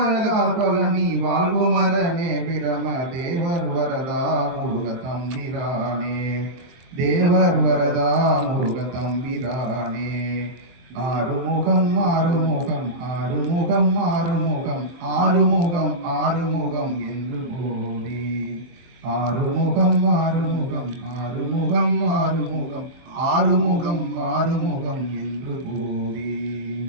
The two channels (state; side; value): late; left; 23 ms